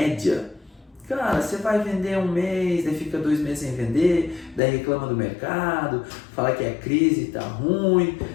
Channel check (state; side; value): drops out; right; at 4.6 s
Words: cara, você vai vender um mês, daí fica 2 meses sem vender, daí reclama do mercado, fala que é crise, tá ruim.